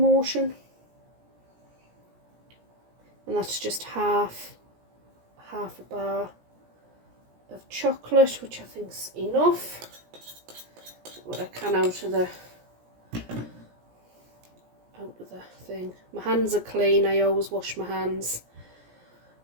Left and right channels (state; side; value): late; left; 17 ms